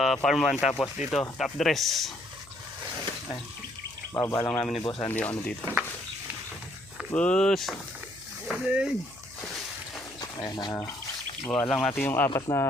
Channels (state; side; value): noise; left; hum, 24 dB below the sound